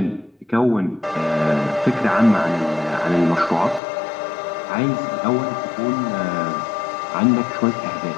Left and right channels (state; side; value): drops out; right; at 3.8 s